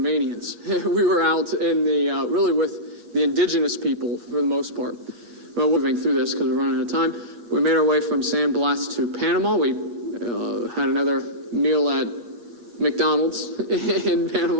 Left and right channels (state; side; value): late; left; 8.4 ms